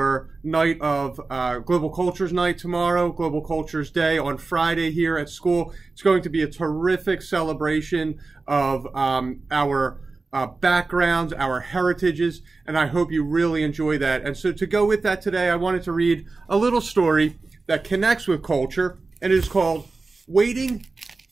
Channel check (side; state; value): left; quieter; 3.8 dB